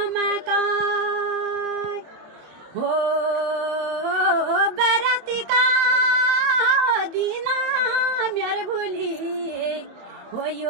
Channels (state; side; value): late; left; 27 ms